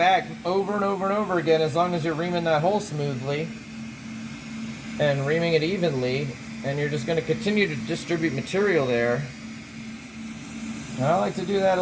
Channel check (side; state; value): both; identical; correlation 1.00